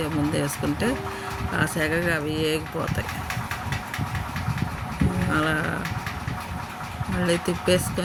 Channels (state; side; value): identical; both; correlation 1.00